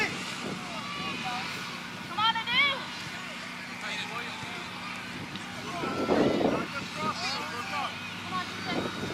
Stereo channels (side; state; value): both; identical; correlation 1.00